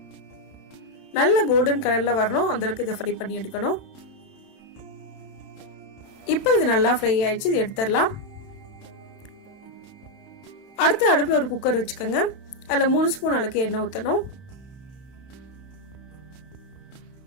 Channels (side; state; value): right; late; 31 ms